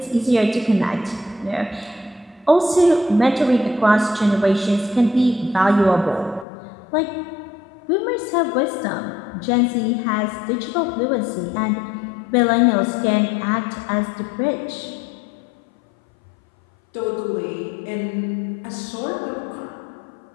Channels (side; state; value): right; drops out; at 6.5 s